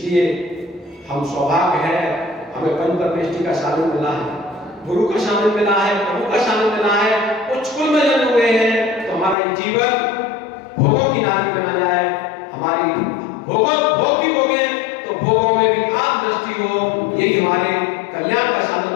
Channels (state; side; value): drops out; right; at 9.3 s